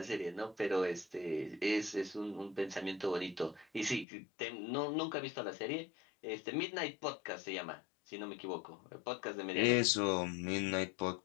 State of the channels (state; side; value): drops out; right; at 4.0 s